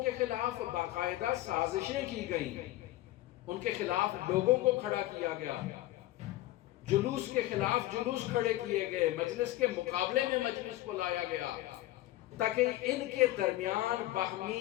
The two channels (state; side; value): quieter; right; 16.0 dB